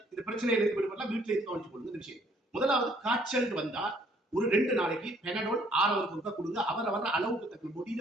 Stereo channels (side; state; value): both; normal; correlation 0.62